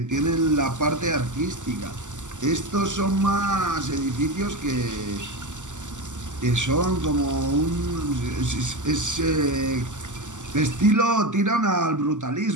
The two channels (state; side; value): late; left; 0.86 ms